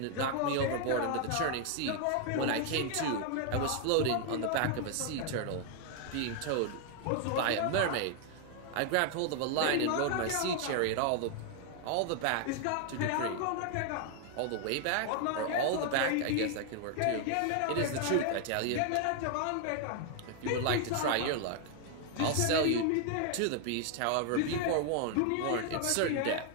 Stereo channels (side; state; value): both; different; correlation 0.00